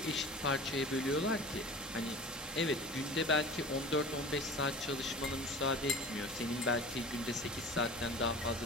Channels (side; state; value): both; normal; correlation 0.39